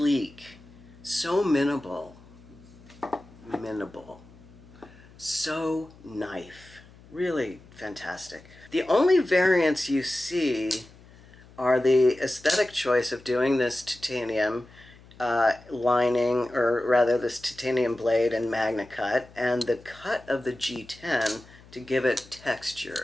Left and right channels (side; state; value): left; noise; hum, 23 dB below the sound